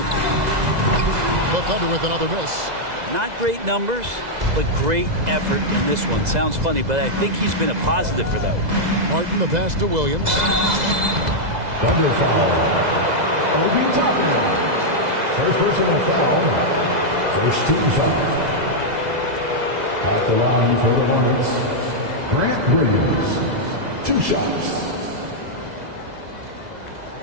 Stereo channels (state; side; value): late; left; 2.0 ms